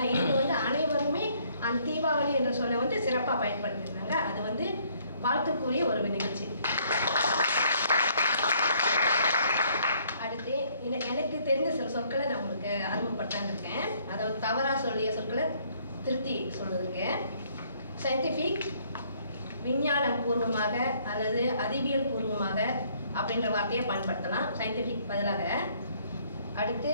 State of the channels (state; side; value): inverted; both; correlation -0.64